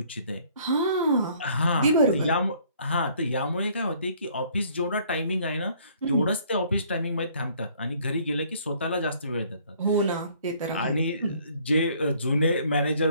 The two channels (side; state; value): both; inverted; correlation -0.59